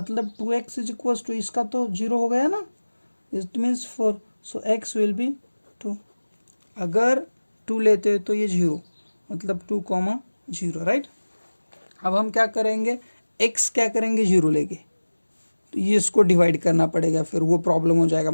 2x इज इक्वल्स टू, इसका तो 0 हो गया ना, it means 4, so x will be 2। अगर 2 लेते तो ये 0, मतलब 2,0, राइट? अब हम क्या करेंगे? x क्या करेंगे? 0 लेंगे, तो ये इसको डिवाइड करना पड़ेगा, फिर वो प्रॉब्लम हो जाएगा,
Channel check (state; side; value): inverted; both; correlation -1.00